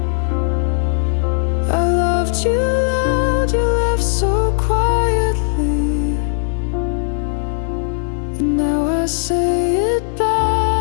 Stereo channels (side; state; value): right; silent; digital silence